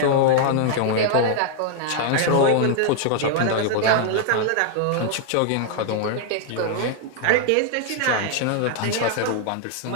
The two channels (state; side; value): different; both; correlation 0.00